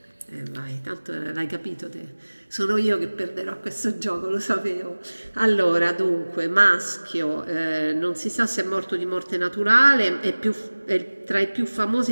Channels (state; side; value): inverted; both; correlation -1.00